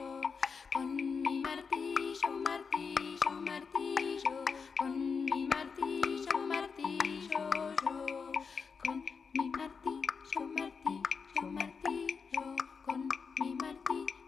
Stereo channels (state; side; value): quieter; right; 5.5 dB